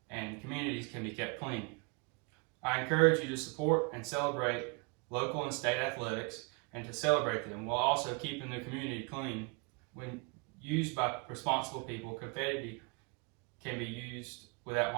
and communities can be kept clean. I encourage you to support and celebrate local and state athletics and to celebrate them while also keeping the community clean. When used by responsible people, confetti can be used without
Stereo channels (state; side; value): quieter; left; 33.9 dB